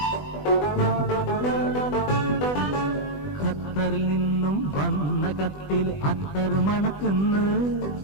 ഖത്തറിൽ നിന്നും വന്ന കത്തിൽ അത്തർ മണക്കുന്നു,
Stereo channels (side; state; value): right; late; 20 ms